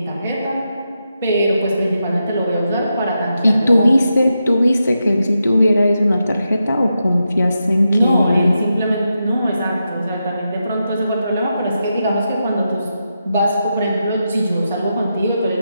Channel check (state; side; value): inverted; both; correlation -0.87